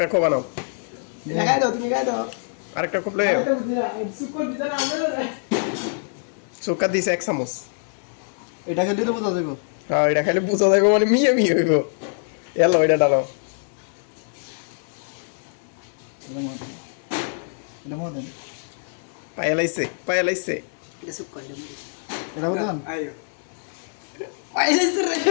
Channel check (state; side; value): silent; right; digital silence